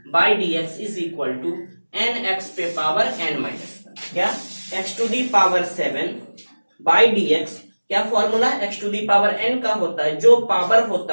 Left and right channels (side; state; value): both; inverted; correlation -1.00